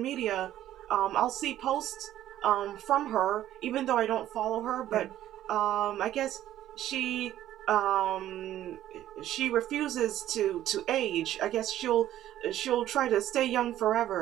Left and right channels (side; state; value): left; quieter; 12.7 dB